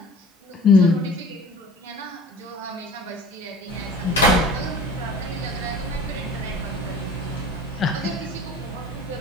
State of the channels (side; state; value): both; normal; correlation 0.44